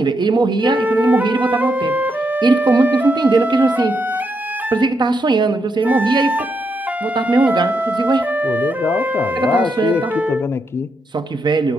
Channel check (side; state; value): both; normal; correlation 0.81